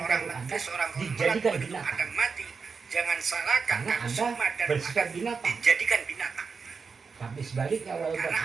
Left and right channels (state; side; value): quieter; left; 5.2 dB